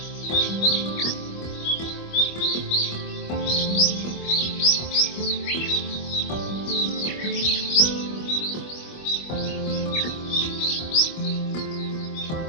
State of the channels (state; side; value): late; right; 25 ms